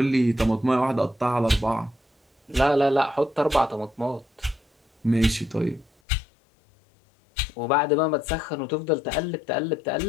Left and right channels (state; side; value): drops out; right; at 5.9 s